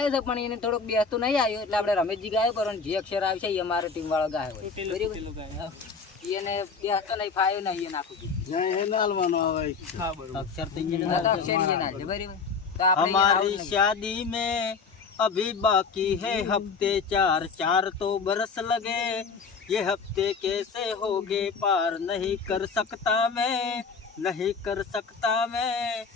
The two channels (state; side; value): quieter; right; 5.1 dB